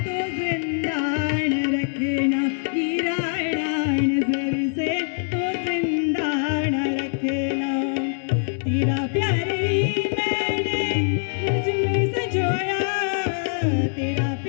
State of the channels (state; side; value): silent; right; 63 dB below the other